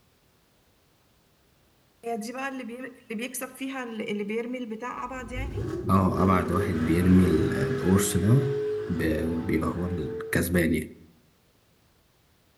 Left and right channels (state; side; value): identical; both; correlation 1.00